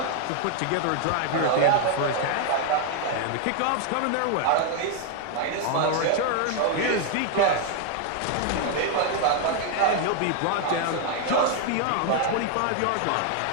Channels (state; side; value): different; both; correlation 0.00